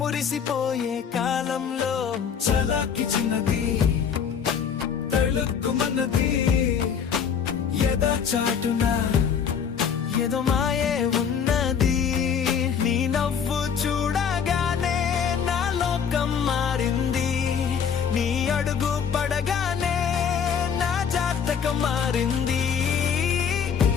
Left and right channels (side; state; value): right; quieter; 7.3 dB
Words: కాలంలో చలాకి చిన్నది తళుక్కుమన్నది ఎద చాటున ఏదో మాయే ఉన్నది. నీ నవ్వు చూడగానే నా లోకం మారింది, నీ అడుగు పడగానే నా జాతకం మారింది.